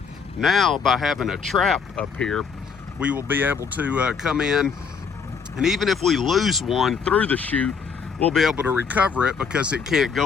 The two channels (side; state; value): right; quieter; 6.0 dB